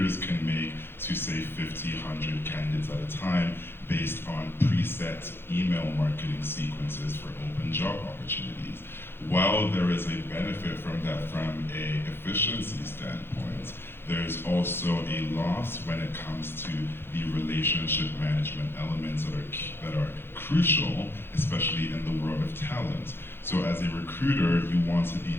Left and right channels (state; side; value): late; right; 0.11 ms